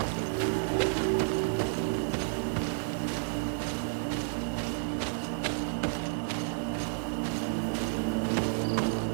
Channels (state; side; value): silent; left; digital silence